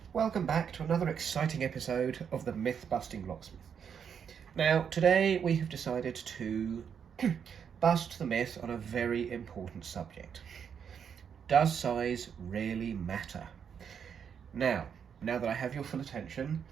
Welcome back to another exciting episode of the Myth-Busting Locksmith. Now, today we have decided to bust the myth on a very important subject. Does size really matter? Now that I have your full attention,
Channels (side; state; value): left; quieter; 7.5 dB